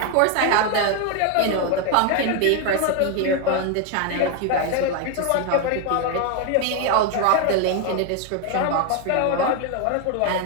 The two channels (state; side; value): different; both; correlation 0.01